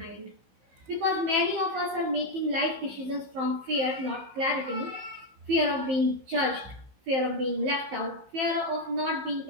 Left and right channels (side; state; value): left; late; 15 ms